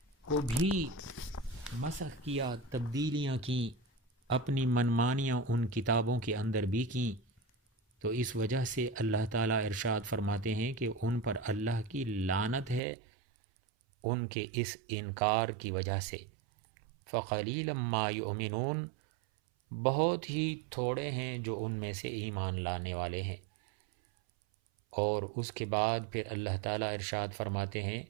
کو بھی مسخ کیا، تبدیلیاں کیں، اپنی منمانیاں ان کتابوں کے اندر بھی کیں۔ تو اس وجہ سے اللہ تعالیٰ ارشاد فرماتے ہیں کہ ان پر اللہ کی لعنت ہے ان کے اس انکار کی وجہ سے۔ فقلیلا ما یؤمنون، بہت ہی تھوڑے ہیں جو ان میں سے ایمان لانے والے ہیں۔ اور اس کے بعد پھر اللہ تعالیٰ ارشاد فرماتے ہیں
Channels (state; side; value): drops out; left; at 12.8 s